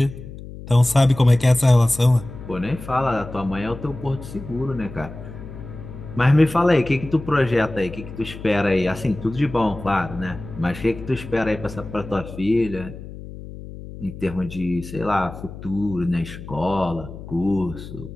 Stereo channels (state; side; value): noise; left; hum, 13 dB below the sound